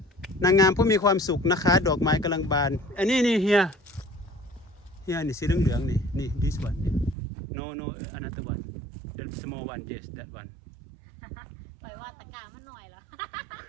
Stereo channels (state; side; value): drops out; left; at 7.2 s